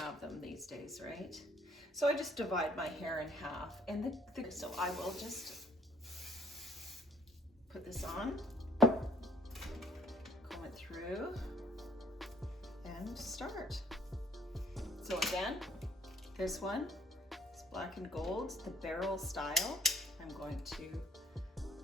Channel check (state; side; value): normal; both; correlation 0.63